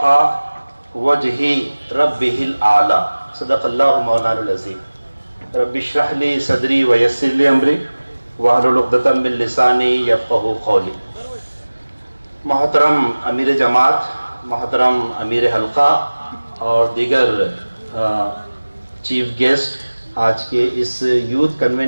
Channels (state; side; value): inverted; both; correlation -1.00